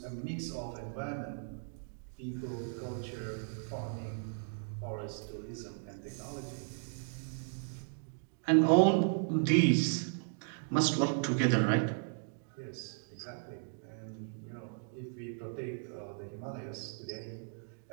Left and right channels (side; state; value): left; silent; digital silence